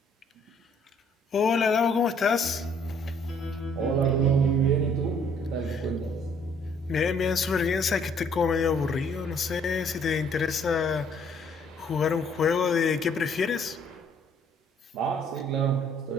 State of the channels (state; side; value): normal; both; correlation 0.63